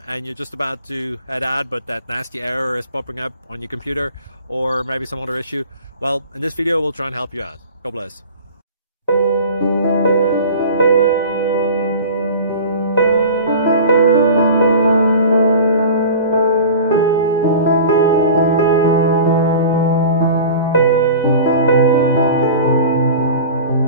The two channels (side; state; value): both; inverted; correlation -0.38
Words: and you're just about to head out, but that nasty error is popping up on your computer, or maybe some other issue. Well, in this video we'll try and help you out. God bless.